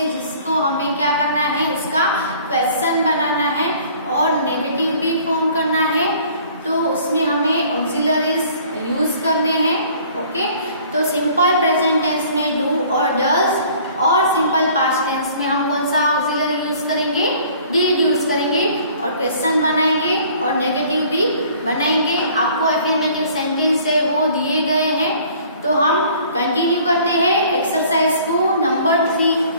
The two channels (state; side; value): inverted; both; correlation -0.53